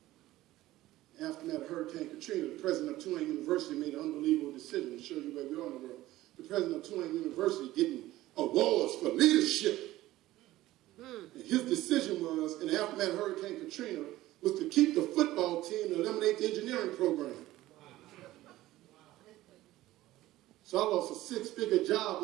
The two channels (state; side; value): quieter; left; 16.1 dB